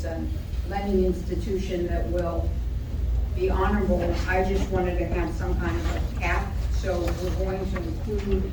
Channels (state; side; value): identical; both; correlation 1.00